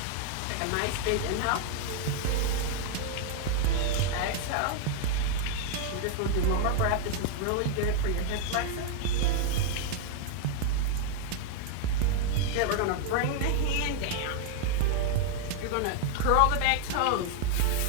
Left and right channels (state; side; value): different; both; correlation 0.00